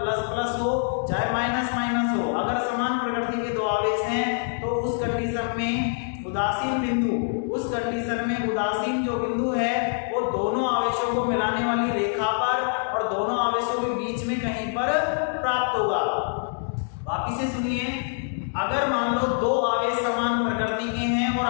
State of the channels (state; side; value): silent; right; 62 dB below the other